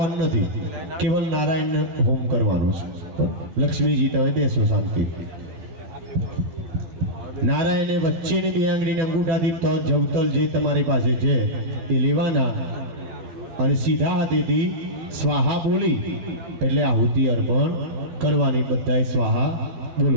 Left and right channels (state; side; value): late; left; 12 ms